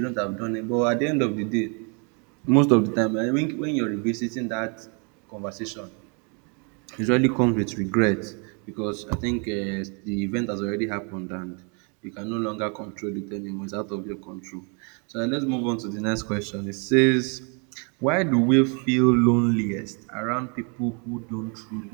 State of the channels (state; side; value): quieter; left; 35.9 dB